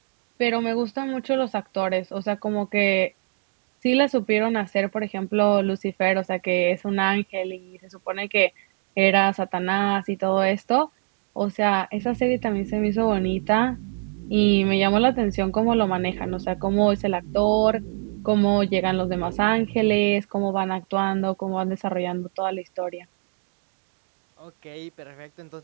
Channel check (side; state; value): left; silent; digital silence